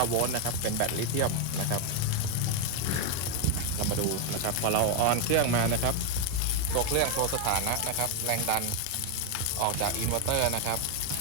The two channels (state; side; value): different; both; correlation 0.01